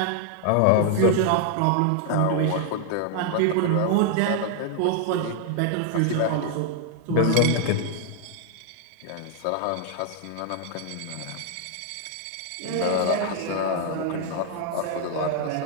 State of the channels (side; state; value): both; different; correlation -0.01